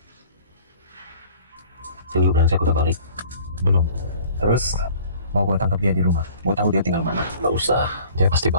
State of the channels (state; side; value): inverted; both; correlation -0.50